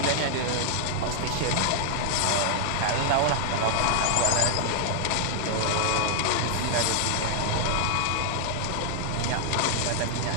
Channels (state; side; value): different; both; correlation 0.00